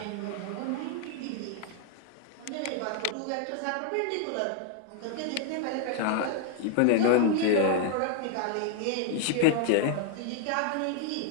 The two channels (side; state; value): both; different; correlation 0.00